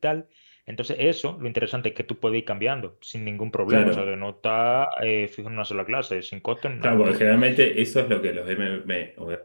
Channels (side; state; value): both; inverted; correlation -1.00